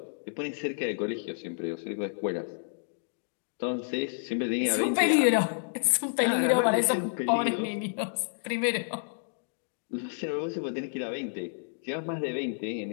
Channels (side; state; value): right; silent; digital silence